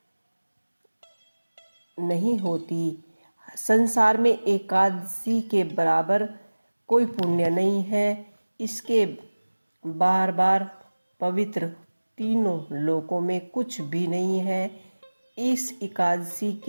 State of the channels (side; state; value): both; inverted; correlation -1.00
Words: संसार में एकादशी के बराबर कोई पुण्य नहीं है। इसके बार बार पवित्र तीनों लोकों में कुछ भी नहीं है। इस एकादशी